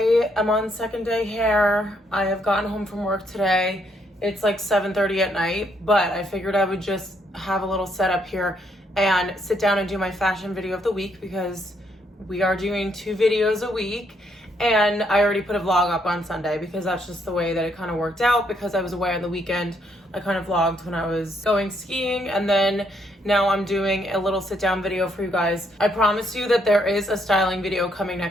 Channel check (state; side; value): normal; both; correlation 0.73